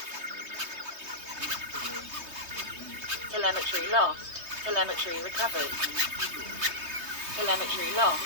Telemetry lost. Telemetry recovered. Telemetry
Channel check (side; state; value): left; late; 3.2 ms